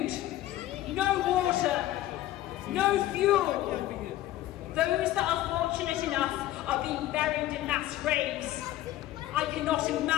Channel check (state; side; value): quieter; right; 14.5 dB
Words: no water, no fuel. Those that are fortunate enough are being buried in mass graves. I cannot